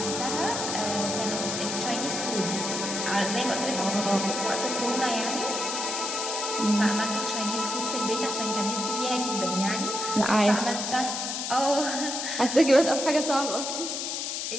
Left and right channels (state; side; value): noise; left; hiss, 3 dB below the sound